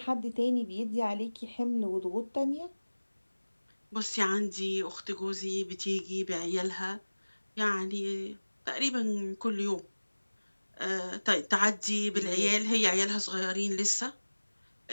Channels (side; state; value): both; inverted; correlation -1.00